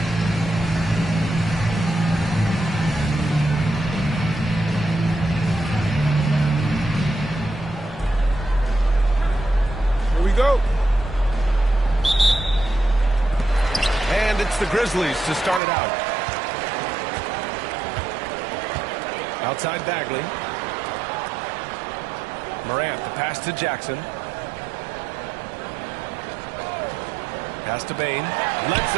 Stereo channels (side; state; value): left; drops out; at 15.6 s